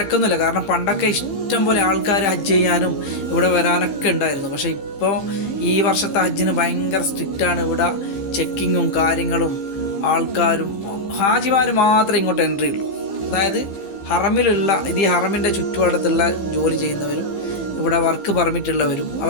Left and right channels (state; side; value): late; right; 15 ms